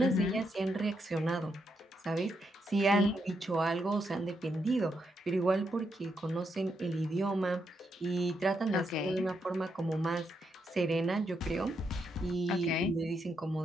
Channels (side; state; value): both; normal; correlation 0.80